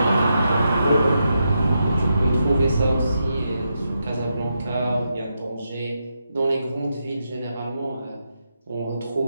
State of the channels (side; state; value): both; inverted; correlation -0.84